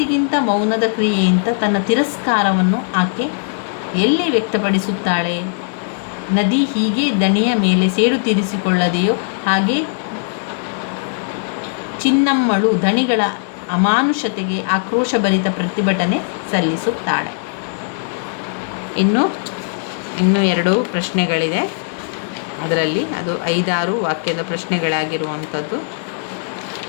ಮೌನದ ಕ್ರಿಯೆಯಿಂದ ತನ್ನ ತಿರಸ್ಕಾರವನ್ನು ಆಕೆ ಎಲ್ಲಿ ವ್ಯಕ್ತಪಡಿಸುತ್ತಾಳೆ? ನದಿ ಹೀಗೆ ದಣಿಯ ಮೇಲೆ ಸೇಡು ತೀರಿಸಿಕೊಳ್ಳದೆಯೋ ಹಾಗೆ ಚಿನ್ನಮ್ಮಳು ಧಣಿಗಳ ಅಮಾನುಷತೆಗೆ ಆಕ್ರೋಶಭರಿತ ಪ್ರತಿಭಟನೆ ಸಲ್ಲಿಸುತ್ತಾಳೆ. ಇನ್ನು 2 ಪ್ರಶ್ನೆಗಳಿದೆ. ಅದರಲ್ಲಿ ಅದು 5-6 ವಾಕ್ಯದ ಪ್ರಶ್ನೆಗಳಾಗಿರುವಂಥದ್ದು.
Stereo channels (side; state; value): right; silent; 61 dB below the other